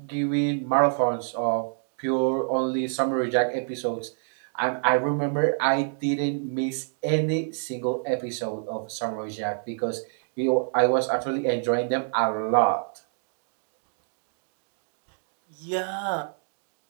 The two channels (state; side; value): silent; left; digital silence